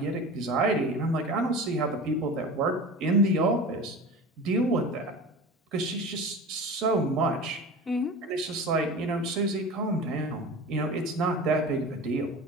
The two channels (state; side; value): normal; both; correlation 0.34